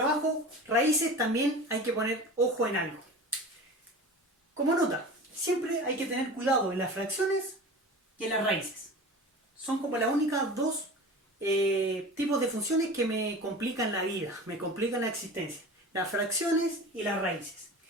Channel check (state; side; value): normal; both; correlation 0.35